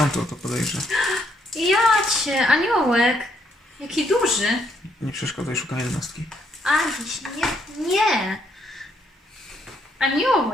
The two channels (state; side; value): normal; both; correlation 0.73